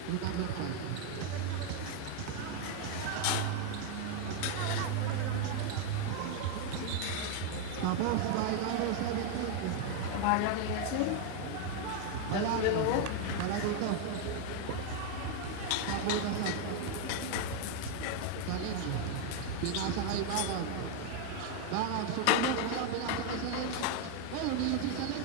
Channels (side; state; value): both; different; correlation 0.01